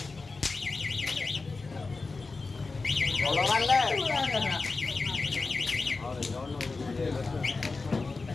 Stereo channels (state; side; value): quieter; right; 3.9 dB